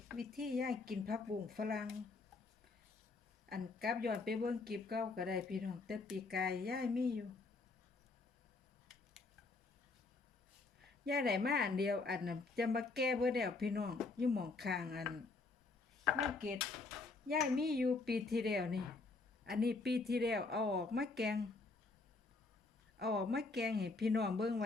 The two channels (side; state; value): right; quieter; 3.8 dB